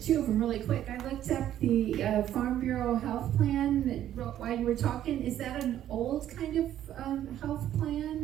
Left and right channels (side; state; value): left; quieter; 11.6 dB